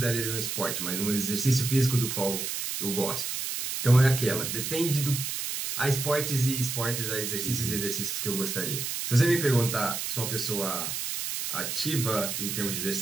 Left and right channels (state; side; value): noise; right; hiss, 3 dB below the sound